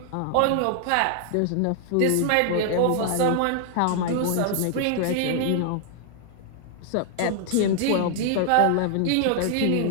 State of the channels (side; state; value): both; different; correlation 0.00